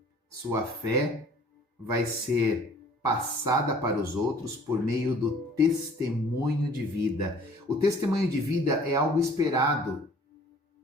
sua fé vai ser passada para os outros por meio do testemunho de vida. O testemunho de vida é algo esperado,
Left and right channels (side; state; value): both; normal; correlation 0.52